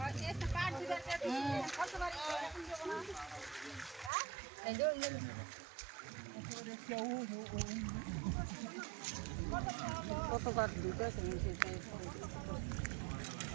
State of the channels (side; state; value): left; drops out; at 4.1 s